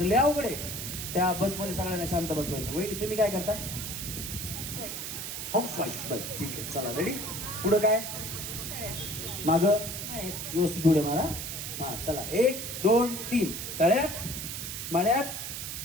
लय अवघड आहे. त्या बसमध्ये सगळ्यांना शांत बसवायचं. वहिनी तुम्ही काय करता. House wife. बस ठीक आहे. चला रेडी पुढं काय माग व्यवस्थित उड्या मारा. हा चला 1 2 3 तळ्यात मळ्यात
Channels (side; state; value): right; noise; hiss, 6 dB below the sound